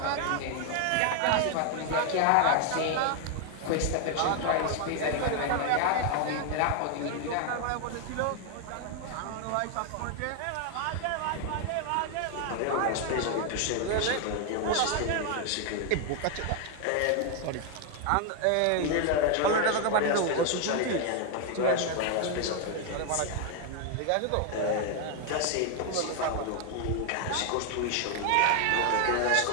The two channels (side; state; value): both; different; correlation 0.00